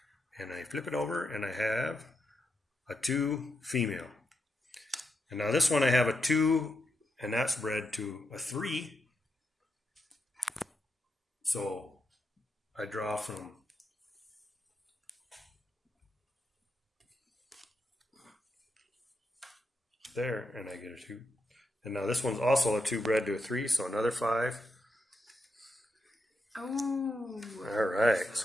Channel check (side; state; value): both; normal; correlation 0.84